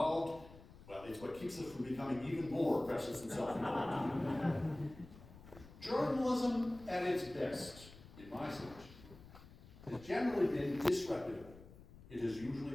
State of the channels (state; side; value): noise; left; rumble, 19 dB below the sound